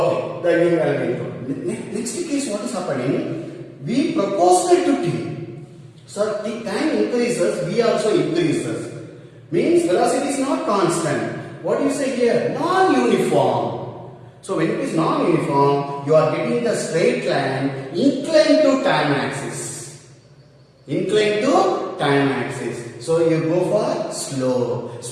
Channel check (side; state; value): both; identical; correlation 1.00